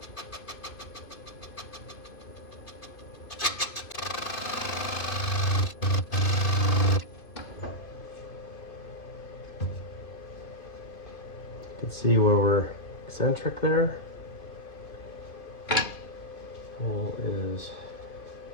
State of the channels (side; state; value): right; late; 2.5 ms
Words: You can see where we're eccentric there. Well, is